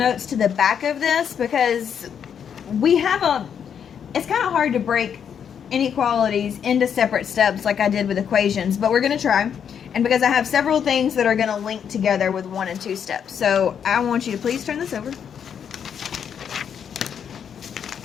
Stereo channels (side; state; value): right; quieter; 7.9 dB